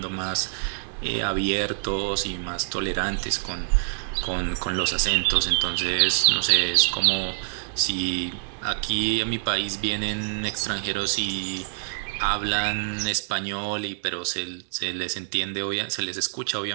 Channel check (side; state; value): left; silent; 61 dB below the other